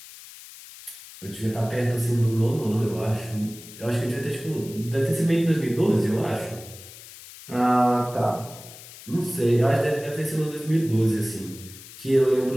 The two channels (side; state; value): left; noise; hiss, 17 dB below the sound